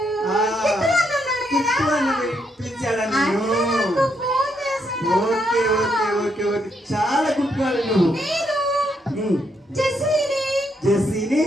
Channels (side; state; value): both; normal; correlation 0.77